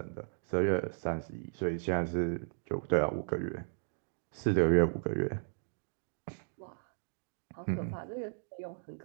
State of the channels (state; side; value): silent; left; digital silence